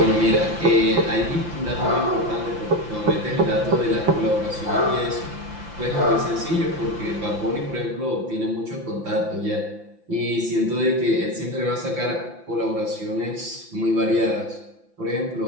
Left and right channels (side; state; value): left; late; 5.8 ms